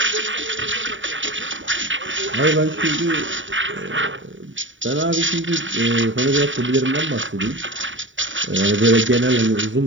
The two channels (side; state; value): left; late; 0.56 ms